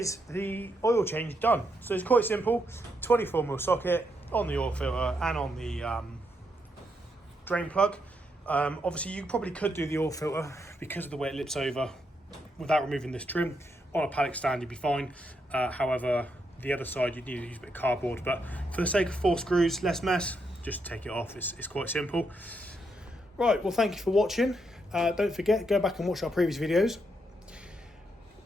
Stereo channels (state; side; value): normal; both; correlation 0.79